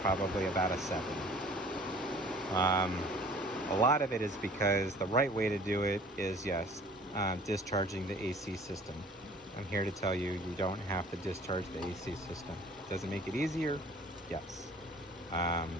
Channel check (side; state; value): both; normal; correlation 0.50